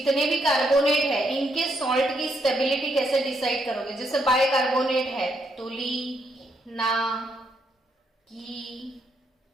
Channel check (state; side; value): normal; both; correlation 0.76